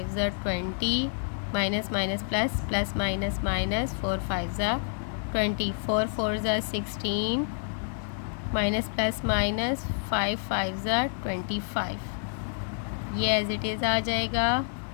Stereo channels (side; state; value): right; silent; digital silence